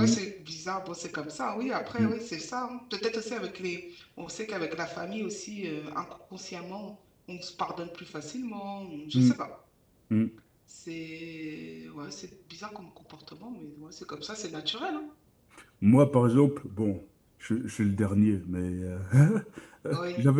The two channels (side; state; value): both; identical; correlation 1.00